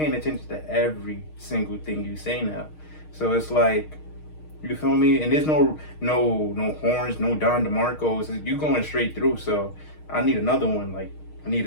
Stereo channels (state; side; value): late; right; 6.5 ms